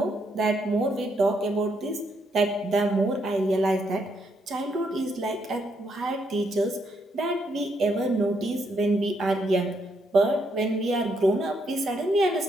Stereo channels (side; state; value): both; normal; correlation 0.76